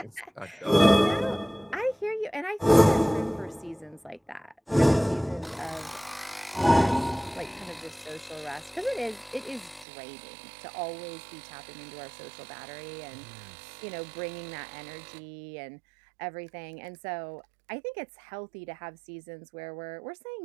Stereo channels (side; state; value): left; drops out; at 9.9 s